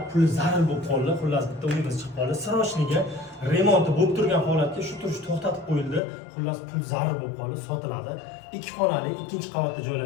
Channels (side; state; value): right; drops out; at 6.0 s